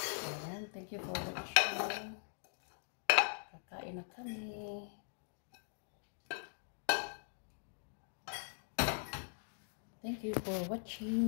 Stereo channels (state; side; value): silent; right; digital silence